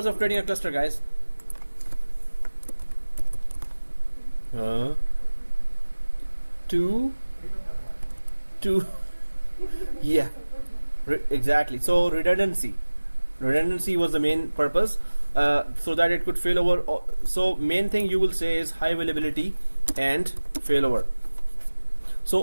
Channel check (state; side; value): inverted; both; correlation -1.00